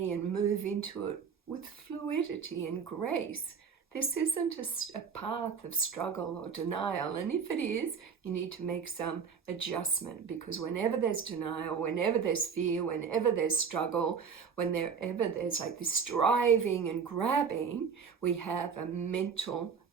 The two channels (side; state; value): left; quieter; 6.3 dB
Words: and move into it with fluidity and grace. This isn't a path of struggle or denial, and if it is, you need to make some adjustment, because whenever there's denial, whenever there's fear, whenever there's struggle, whenever there's like this striving and grabbing, we have a mental